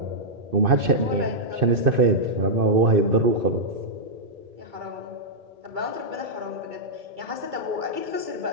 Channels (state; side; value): late; left; 2.6 ms